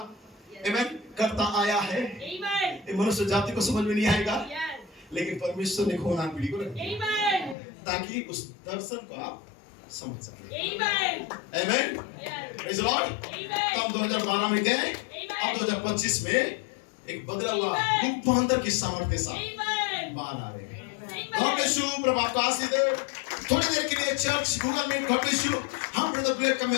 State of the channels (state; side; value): drops out; right; at 7.6 s